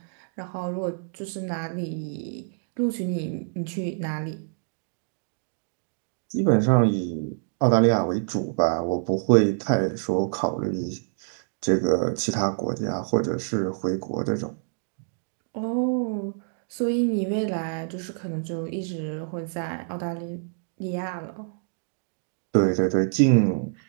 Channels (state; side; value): silent; left; digital silence